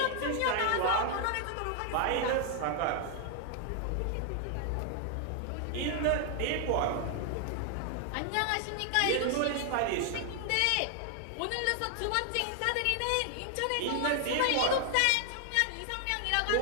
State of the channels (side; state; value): both; different; correlation 0.00